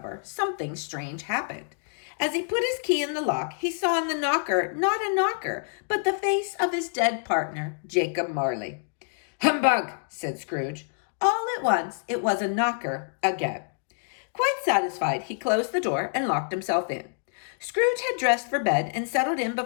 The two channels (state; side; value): silent; right; digital silence